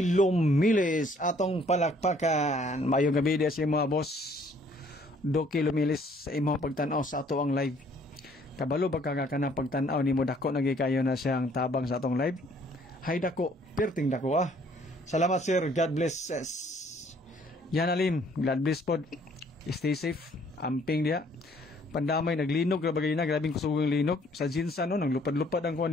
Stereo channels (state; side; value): normal; both; correlation 0.61